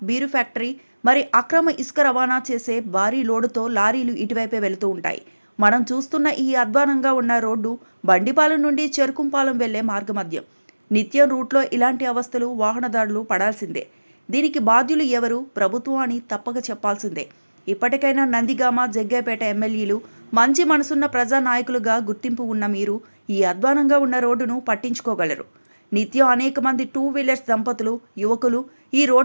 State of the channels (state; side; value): inverted; both; correlation -1.00